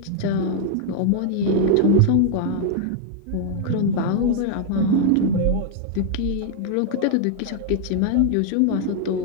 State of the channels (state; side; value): different; both; correlation -0.01